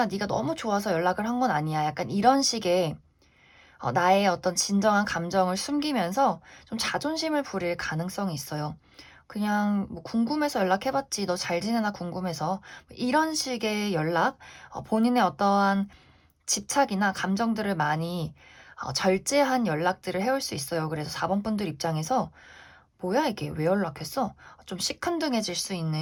네가 너무 좋아서 연락을 한 건 아니야." 약간 이런 식의 나의 어떤 진정한 감정을 숨기면서 좀 자존심을 부릴 가능성이 있어요. 그냥 뭐 "궁금해서 연락해 봤지. 너 잘 지내나 궁금해서." 이런 식의 연락, 본인의 어떠한 집착이나 감정들을 많이 절제한 연락들을 해올 수 있어요. 그래서 4번 분들 입장에서 '뭐야 이게? 왜 연락했어?' 좀 시큰둥해질 수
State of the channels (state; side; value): identical; both; correlation 1.00